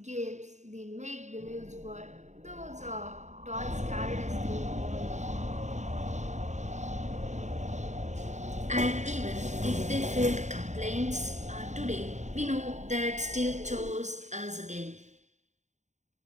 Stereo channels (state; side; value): late; left; 0.34 ms